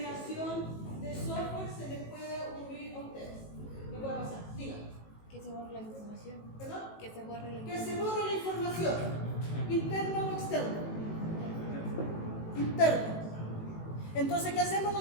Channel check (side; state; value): right; late; 18 ms